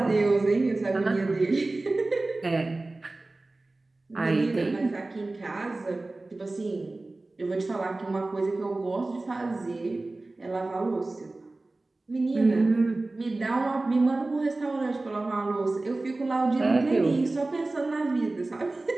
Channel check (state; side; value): quieter; left; 3.1 dB